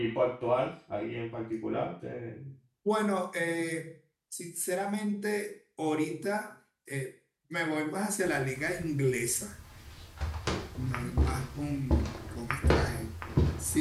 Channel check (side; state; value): both; identical; correlation 1.00